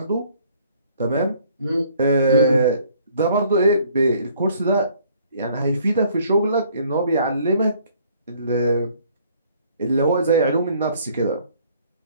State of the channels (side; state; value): both; inverted; correlation -0.60